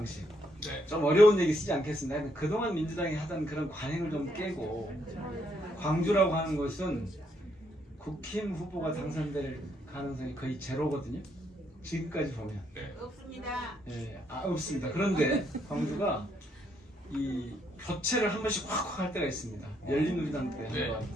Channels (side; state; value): both; normal; correlation 0.74